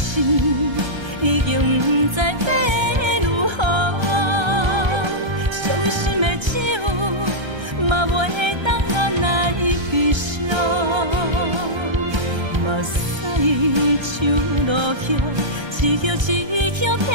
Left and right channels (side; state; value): left; late; 1.3 ms